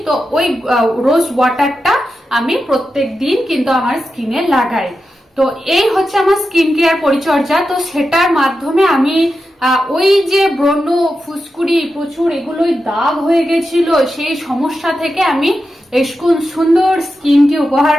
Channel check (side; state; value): both; normal; correlation 0.90